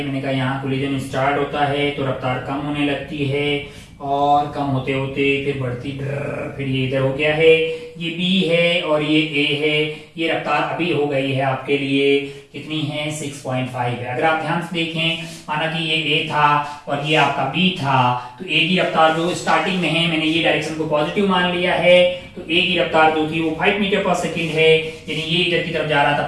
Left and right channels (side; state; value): both; identical; correlation 1.00